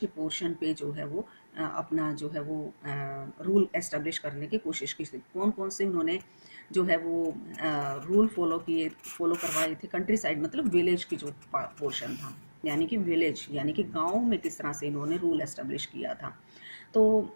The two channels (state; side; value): inverted; both; correlation -1.00